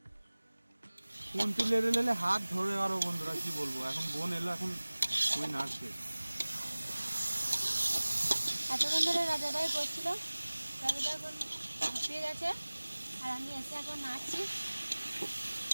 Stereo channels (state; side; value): inverted; both; correlation -1.00